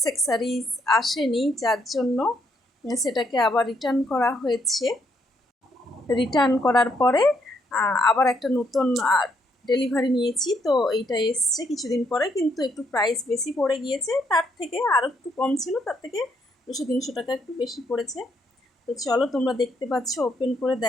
আসেনি, যার জন্য সেটাকে আবার রিটার্ন করা হয়েছে। রিটার্ন করার পরে আবার একটা নতুন ডেলিভারি নিয়েছি। তো এইটা এসছে কিছুদিন পরে, কিন্তু একটু প্রাইস বেশি পড়ে গিয়েছে, তার থেকে আরও একটু কম ছিল, তার থেকে 200-300 টাকা একটু বেশি পড়েছে। তো চলো, তোমরা দেখতে পাচ্ছ ওপেন করে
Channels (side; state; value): both; normal; correlation 0.73